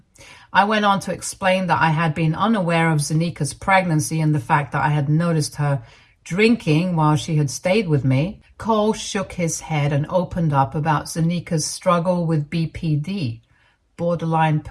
I went on to explain that I had been unaware of Zanika's pregnancy and the fact that I had noticed her drinking while she had stayed with me. Cole shook his head and opened up about Zanika's struggle with BPD, borderline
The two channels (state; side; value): identical; both; correlation 1.00